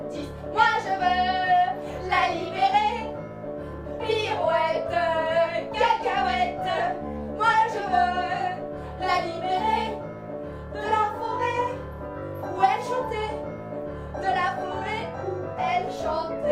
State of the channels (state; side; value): identical; both; correlation 1.00